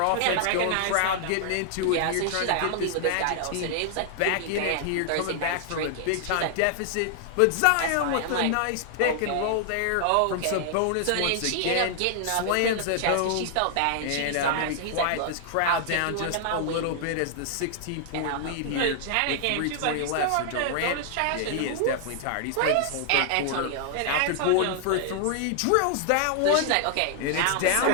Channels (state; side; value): different; both; correlation 0.00